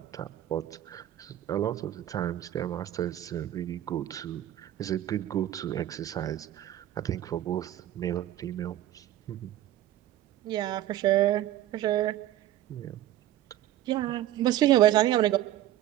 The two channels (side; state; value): left; quieter; 13.0 dB